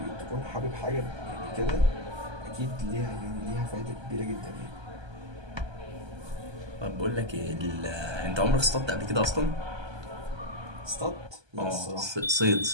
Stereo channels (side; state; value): left; late; 1.3 ms